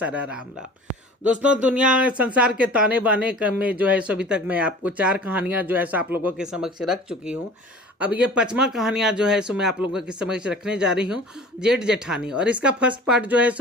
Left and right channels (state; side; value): normal; both; correlation 0.43